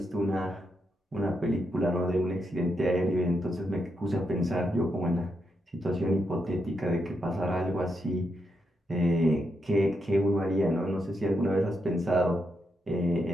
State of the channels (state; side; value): normal; both; correlation 0.82